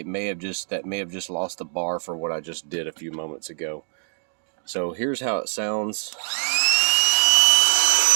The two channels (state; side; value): silent; left; digital silence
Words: may have just lost the bar for what I just did a few moments ago. So here's how it sounds.